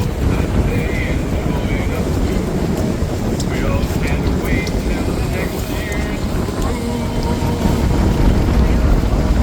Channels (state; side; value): identical; both; correlation 1.00